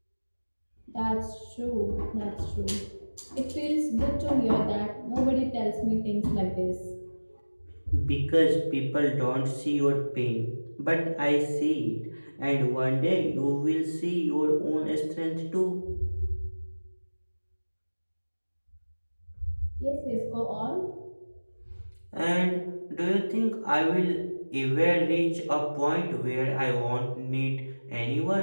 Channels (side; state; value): both; inverted; correlation -1.00